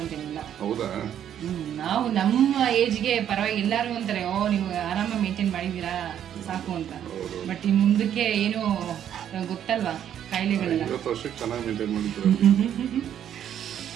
ಅಂತೇನಿಲ್ಲ. ಹೌದಾ? ನಾವು ನಮ್ಮ ಏಜ್ಗೆ ಪರವಾಗಿ ಎಲ್ಲರೂ ಅಂತಾರೆ, ಓ ನೀವು ಆರಾಮಾಗಿ ಮೇಂಟೈನ್ ಮಾಡಿದ್ದೀರಾ ಸಾಕು ಅಂತ. ಬಟ್ ಇನ್ನು ಮುಂದಕ್ಕೆ ಏನು ಗೊತ್ತಲ್ವಾ ಕಾಯಿಲೆಗಳೆಲ್ಲ. 20 ವರ್ಷಕ್ಕೆ ಚೆನ್ನಾಗಿ ಮೇಂಟೈನ್ ಮಾಡಿದ್ರು.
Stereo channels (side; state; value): left; quieter; 10.0 dB